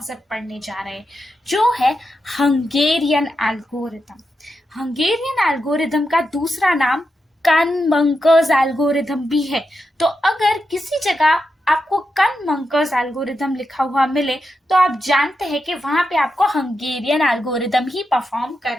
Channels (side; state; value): both; normal; correlation 0.87